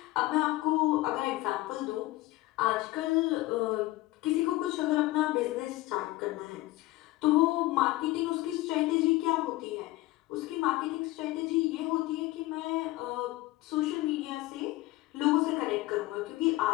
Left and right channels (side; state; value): right; quieter; 18.4 dB